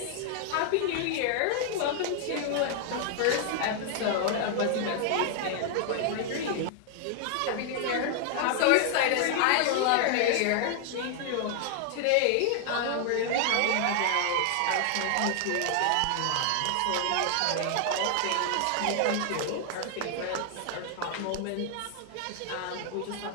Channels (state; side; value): different; both; correlation 0.00